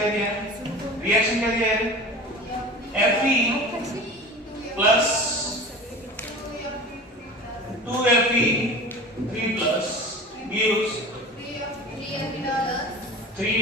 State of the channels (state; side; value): normal; both; correlation 0.36